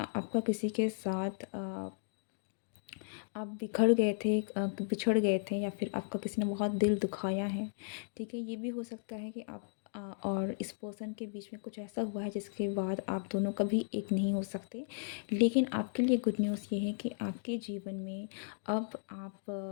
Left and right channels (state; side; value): silent; right; digital silence